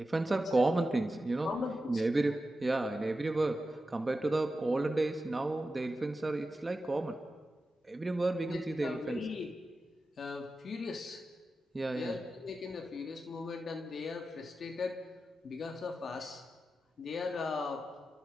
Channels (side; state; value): both; normal; correlation 0.92